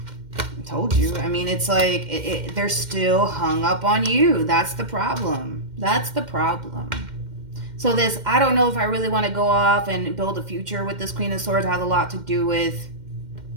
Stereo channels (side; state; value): left; late; 2.1 ms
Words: Told you. I mean, it's like they're still hung up on you. That's the problem. That's the problem. So this, I don't know if I really want to go off and build a future with this Queen of Swords, has a lot to do with